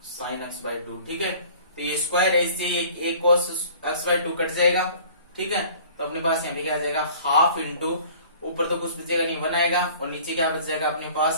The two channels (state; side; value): inverted; both; correlation -0.49